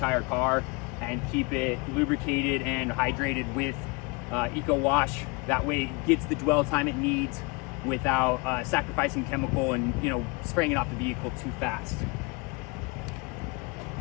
car and keep it lubricated and hydrated with Eco Wash. That way it gets the dwell time it needs without sacrificing chemical and, you know, spraying it off the vehicle too fast.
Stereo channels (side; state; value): right; quieter; 28.9 dB